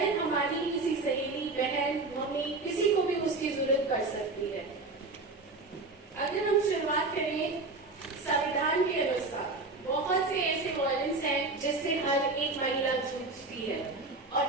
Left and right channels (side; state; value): left; quieter; 3.4 dB